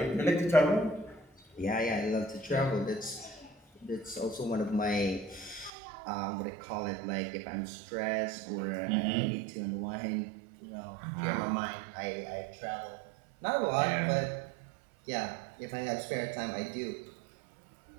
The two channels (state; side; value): drops out; left; at 5.7 s